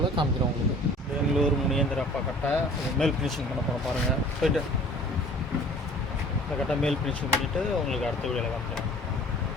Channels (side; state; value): both; normal; correlation 0.48